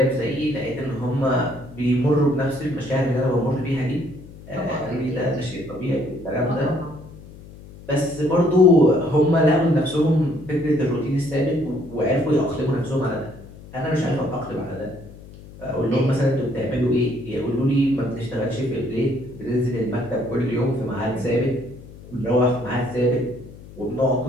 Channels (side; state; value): left; noise; hum, 18 dB below the sound